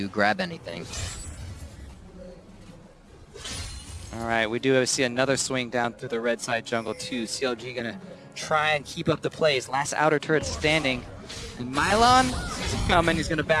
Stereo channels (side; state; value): both; identical; correlation 1.00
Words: grab anything. All right, we do see another swing down through the red side jungle too. CLG gonna try and keep up the plays. Last outer turret standing. And paiN sees it coming. He's gonna